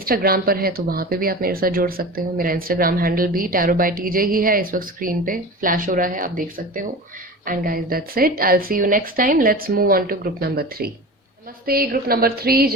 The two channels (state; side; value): normal; both; correlation 0.32